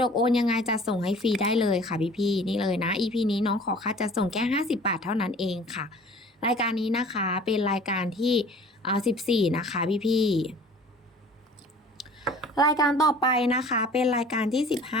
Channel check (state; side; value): normal; both; correlation 0.47